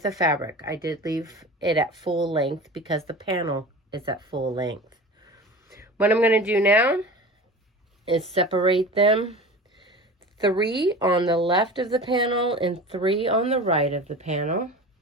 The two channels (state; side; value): normal; both; correlation 0.35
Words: of fabric. I did leave it at full length because the panel is at full length. What I'm going to do now is separate them 3 on the left of the panel and 3 on the right of the panel.